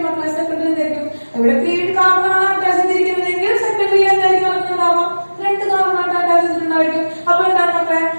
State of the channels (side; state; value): both; inverted; correlation -1.00